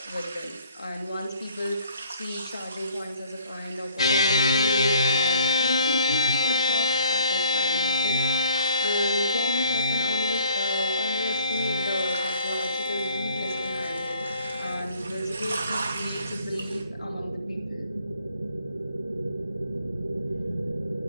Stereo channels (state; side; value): inverted; both; correlation -0.58